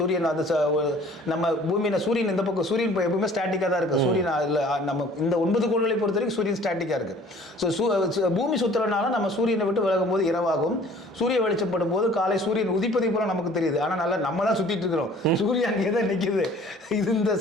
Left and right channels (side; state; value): both; normal; correlation 0.52